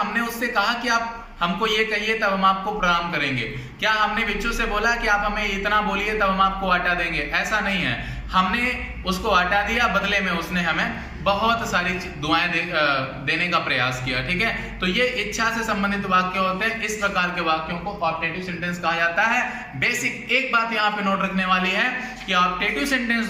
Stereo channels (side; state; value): both; identical; correlation 1.00